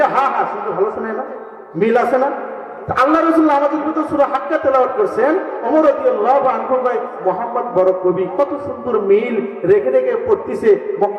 হা হা শুনতে ভালো শোনে না? মিল আছে না? আল্লাহ রাসূল আমাদের ভিতর সূরা হাক্কা তেলাওয়াত করছেন, ওমর রাদিয়াল্লাহু আনহু ভাই মোহাম্মদ বড় কবি, কত সুন্দর মিল রেখে রেখে পড়তিছে।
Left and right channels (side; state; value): both; identical; correlation 1.00